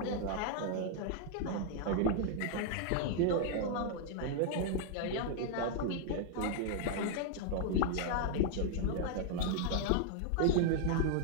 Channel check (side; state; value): both; different; correlation 0.00